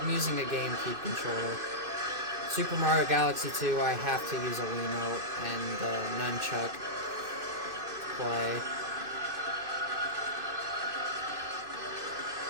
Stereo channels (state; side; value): late; left; 2.5 ms